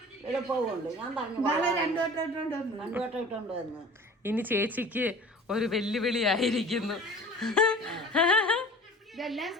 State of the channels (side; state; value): both; normal; correlation 0.42